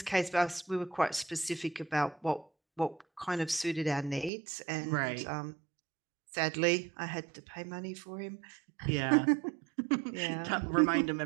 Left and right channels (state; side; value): drops out; left; at 4.3 s